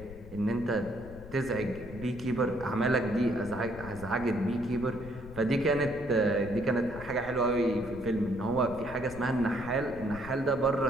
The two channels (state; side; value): noise; left; rumble, 15 dB below the sound